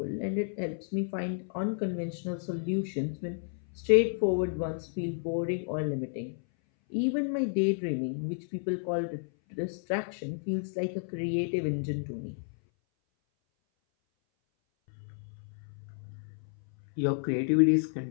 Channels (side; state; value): right; silent; 57 dB below the other